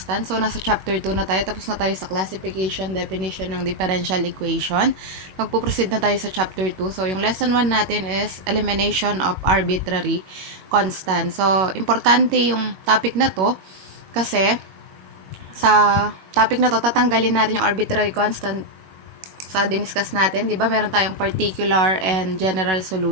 So, nasa chapter 2 na tayo. Tapos na tayo sa classification, definition ng differential equation. Magpuproceed na tayo sa chapter 2. So, yung lesson 1 natin is elimination of arbitrary constants. So, importante yung topic na to kasi sa topic na to, tatanggalin natin yung arbitrary constant sa diniscuss natin, di ba? Meron tayong particular and general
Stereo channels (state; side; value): late; left; 21 ms